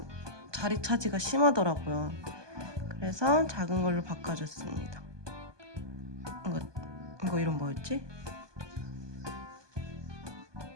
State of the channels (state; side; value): late; left; 1.2 ms